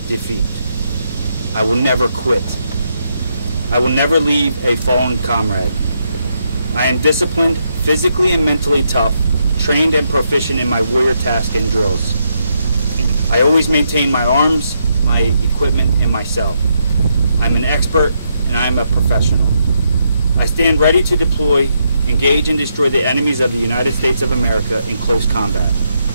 defeat. I will never quit. I will never leave a fallen comrade. I am disciplined, physically and mentally tough, trained and proficient in my warrior tasks and drills. I always maintain my arms, my equipment, and myself. I'm an expert and I am a professional. I stand ready to deploy, engage and destroy the enemies of the United States of America in close combat.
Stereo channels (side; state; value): both; inverted; correlation -0.79